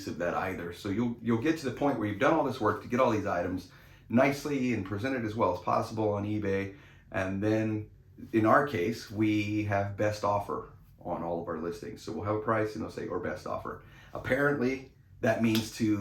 of that either. So you'll get to the point where you've done all this work to get all these items nicely and presented as well as possible on eBay, and then in our case we have best offer on all of our listings. So we'll have a price and they'll say or best offer. Apparently that means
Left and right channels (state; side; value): identical; both; correlation 1.00